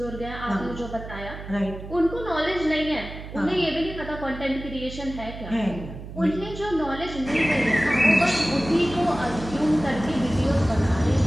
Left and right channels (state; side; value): noise; right; hum, 11 dB below the sound